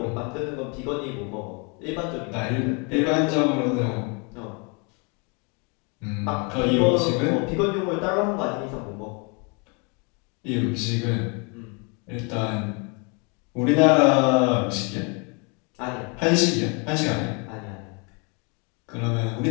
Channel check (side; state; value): right; quieter; 33.5 dB